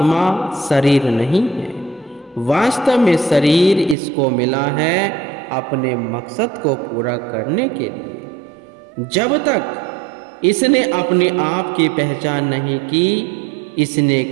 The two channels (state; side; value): drops out; left; at 4.0 s